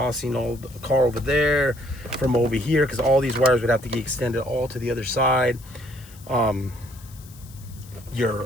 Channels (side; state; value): left; noise; hiss, 22 dB below the sound